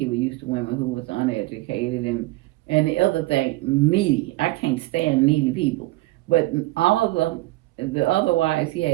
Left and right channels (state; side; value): quieter; left; 19.5 dB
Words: was used to women who was uneducated, and the other thing, needy. I can't stand needy people. But all of the other wives, he